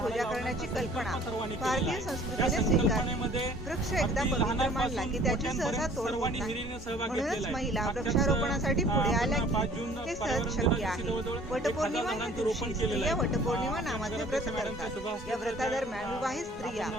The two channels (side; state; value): both; normal; correlation 0.52